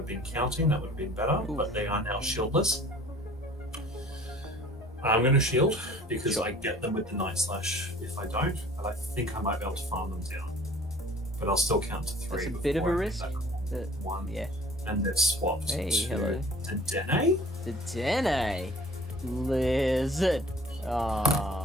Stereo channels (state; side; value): normal; both; correlation 0.50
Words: been counting, that would have been better, but they are now shieldless. I'm going to shield because I get them with the Night Slash if I don't, but I think I might be able to farm them down. But I'll still count to 3. That's a bit of a risk. 1. Yeah. And they've swapped Hey, to hello. Dedenne. Dedenne. Lizard.